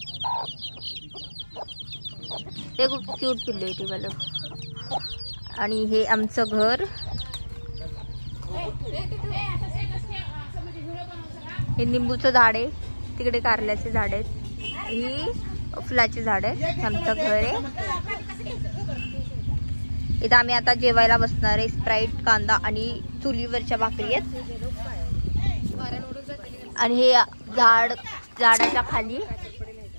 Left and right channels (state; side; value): inverted; both; correlation -1.00